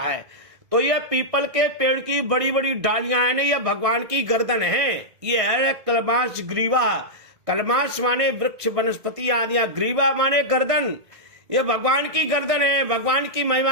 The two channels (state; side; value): late; left; 1.5 ms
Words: है। तो ये पीपल के पेड़ की बड़ी बड़ी डालियां हैं ना, ये भगवान की गर्दन है। ये है कलमाश ग्रीवा। कलमाश माने वृक्ष वनस्पति आदि, ग्रीवा माने गर्दन। ये भगवान की गर्दन है, भगवान की